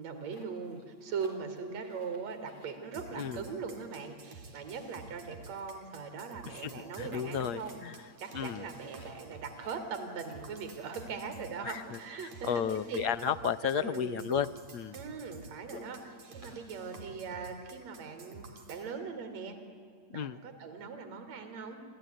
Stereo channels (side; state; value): left; late; 8.6 ms